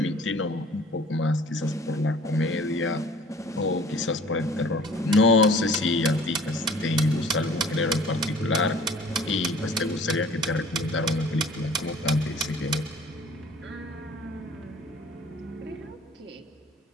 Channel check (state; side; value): normal; both; correlation 0.50